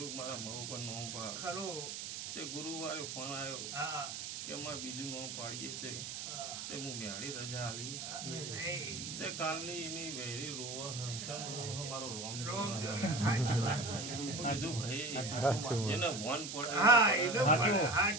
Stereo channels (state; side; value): noise; right; hiss, 6 dB below the sound